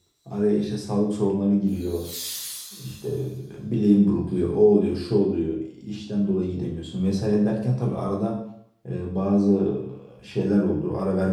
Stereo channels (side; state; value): both; identical; correlation 1.00